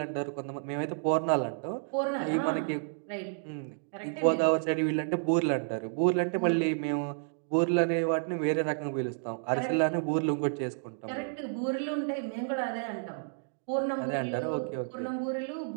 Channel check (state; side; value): silent; left; digital silence